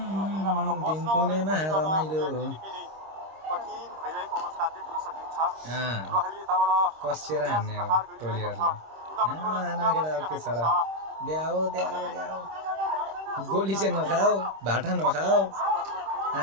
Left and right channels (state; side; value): late; left; 26 ms